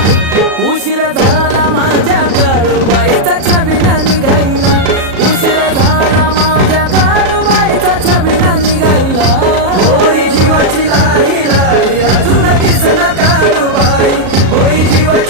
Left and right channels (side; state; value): left; late; 37 ms